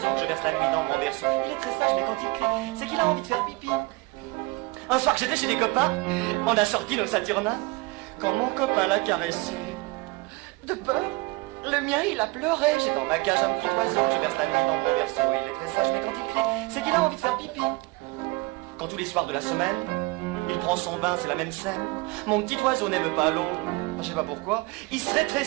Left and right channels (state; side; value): quieter; left; 23.5 dB